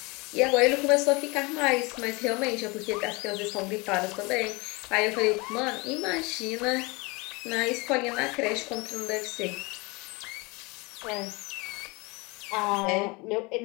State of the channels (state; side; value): quieter; right; 26.4 dB